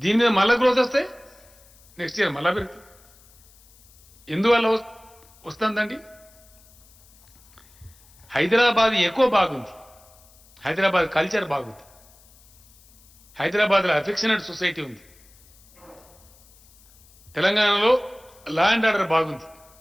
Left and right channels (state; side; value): noise; left; hiss, 28 dB below the sound